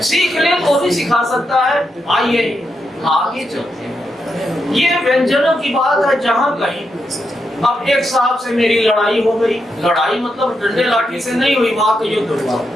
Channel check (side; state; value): both; normal; correlation 0.84